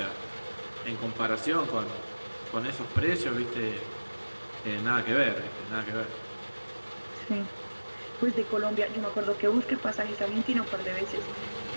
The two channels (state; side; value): inverted; both; correlation -1.00